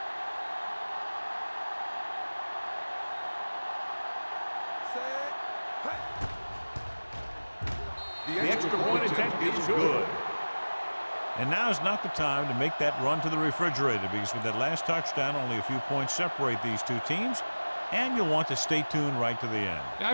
The extra point attempt is good. And now is not the time to make that run to the refrigerator, because with that last touchdown, only a few points separate these two teams, and you'll want to stay tuned right to the end. Yeah, I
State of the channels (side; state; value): both; inverted; correlation -1.00